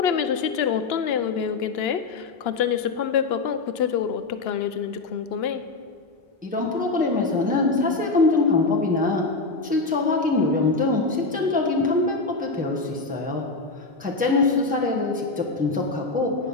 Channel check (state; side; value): quieter; right; 3.8 dB